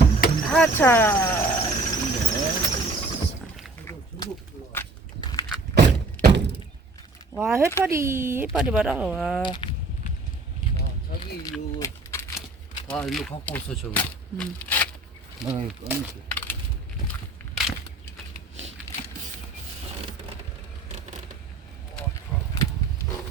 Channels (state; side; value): quieter; left; 3.2 dB